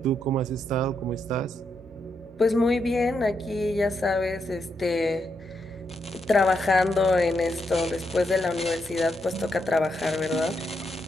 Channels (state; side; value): normal; both; correlation 0.81